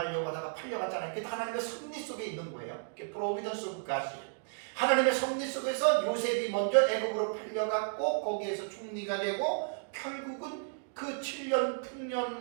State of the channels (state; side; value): silent; left; digital silence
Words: 하다가 팔려갔잖아요. 그게 하나님의 섭리 속에 있는 거예요. 그게 프로비던스 오브 갓이에요. 하나님의 섭리 속에서 요셉이 먼저 애굽으로 팔려갔고 거기에서 총리가 되고 결국은 그 7년